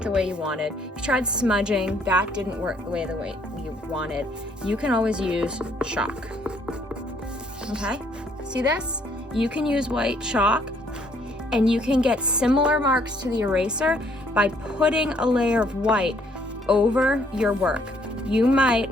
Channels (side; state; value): both; normal; correlation 0.66